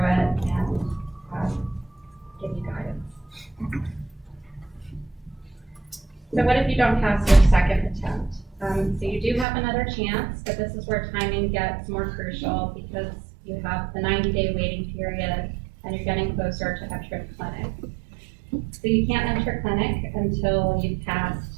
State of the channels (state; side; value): drops out; left; at 9.5 s